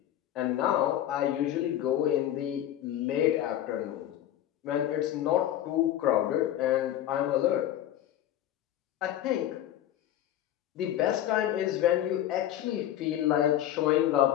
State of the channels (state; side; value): quieter; right; 12.1 dB